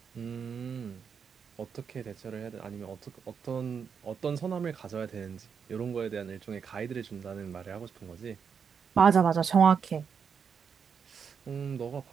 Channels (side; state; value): left; quieter; 6.6 dB